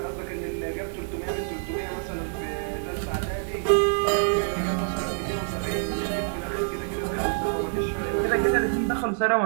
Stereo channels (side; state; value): left; silent; digital silence